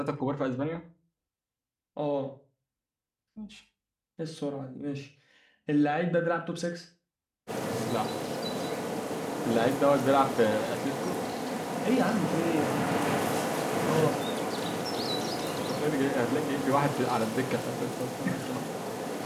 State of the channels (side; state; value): both; identical; correlation 1.00